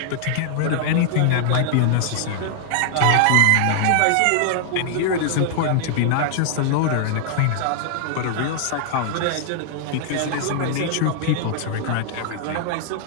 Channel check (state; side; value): different; both; correlation -0.01